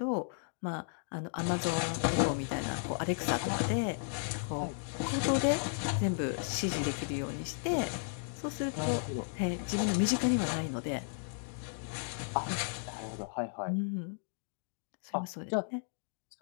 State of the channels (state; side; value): silent; right; digital silence